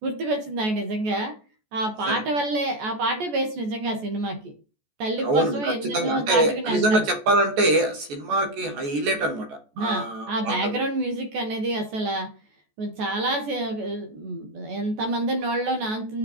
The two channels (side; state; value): left; late; 14 ms